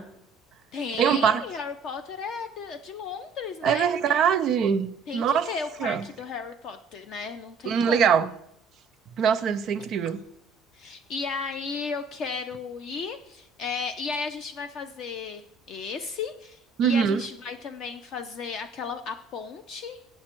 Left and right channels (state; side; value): quieter; left; 4.4 dB